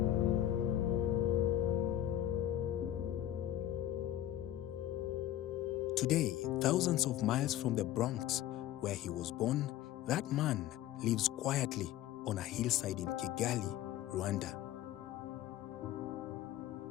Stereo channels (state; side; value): quieter; right; 12.7 dB